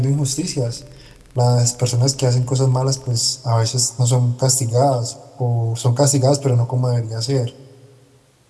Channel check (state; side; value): identical; both; correlation 1.00